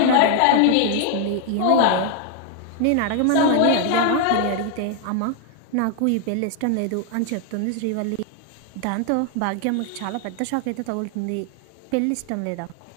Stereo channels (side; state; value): both; different; correlation 0.00